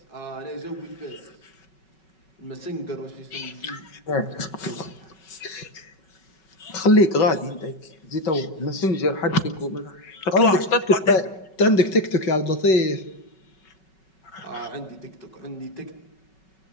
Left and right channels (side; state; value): right; late; 5.3 ms